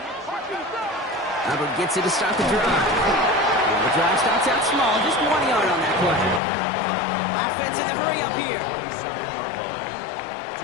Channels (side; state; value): right; drops out; at 6.4 s